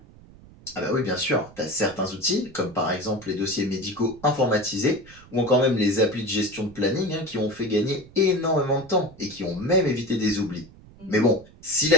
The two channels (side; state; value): right; noise; rumble, 22 dB below the sound